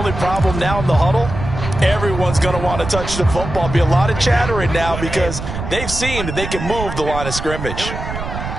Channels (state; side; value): noise; right; rumble, 7 dB below the sound